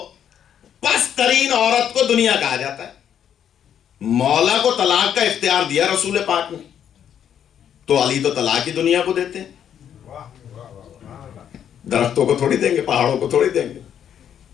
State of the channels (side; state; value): right; quieter; 9.2 dB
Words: پست ترین عورت کو دنیا کہا جاتا ہے. مولا کو طلاق کا اختیار دیا رسول پاک نے, تو علی تو طلاق ہی دنیا کو دیتے ہیں. درختوں کو تھوڑی دیں گے, پہاڑوں کو تھوڑی دیں گے.